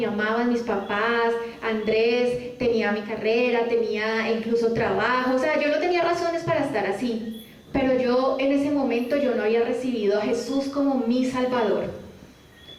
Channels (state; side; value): identical; both; correlation 1.00